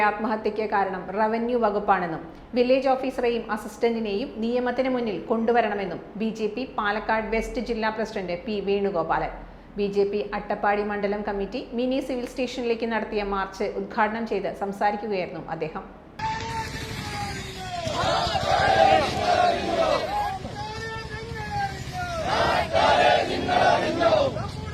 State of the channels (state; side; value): identical; both; correlation 1.00